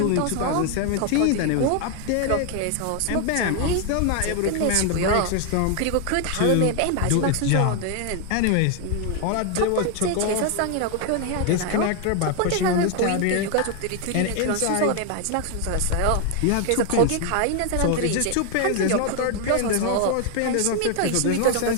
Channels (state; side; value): different; both; correlation 0.00